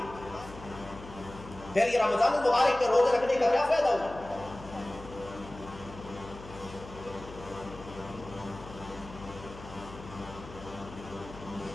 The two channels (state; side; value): noise; left; hum, 15 dB below the sound